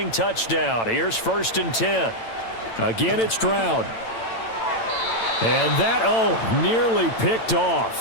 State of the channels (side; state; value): right; late; 8.9 ms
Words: touchdown. Here's 1st and 10. Again, it's Stroud. And that, nearly picked